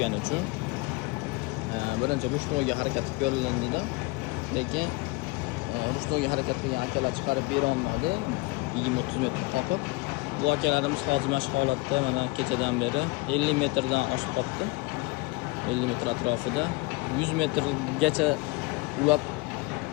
uchun birinchi ruchnoyga harakat ko'rilindida, lekin ruchnoyga harakat qilgan akalar chiqarib bera olmadi, 20-30 metr qoqib. Bu akalarimiz hozir mana shu holatda mana kechadan beri 50 metrdan oshib qopti. 50 metr atrofida 100 metrgacha ulab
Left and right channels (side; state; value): right; quieter; 24.3 dB